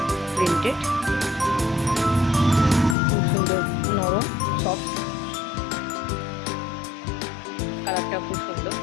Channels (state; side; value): drops out; right; at 3.0 s